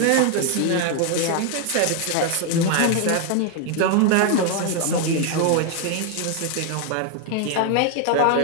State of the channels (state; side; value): different; both; correlation 0.00